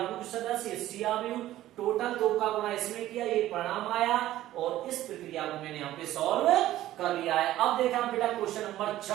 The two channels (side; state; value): left; quieter; 14.3 dB